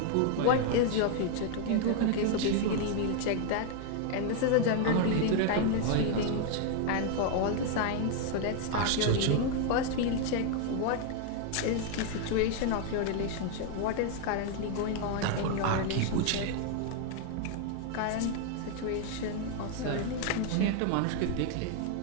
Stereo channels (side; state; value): both; different; correlation 0.00